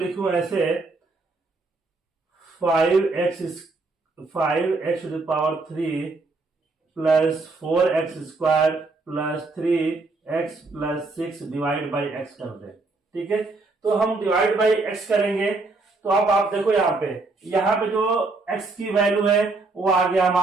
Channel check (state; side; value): quieter; left; 3.5 dB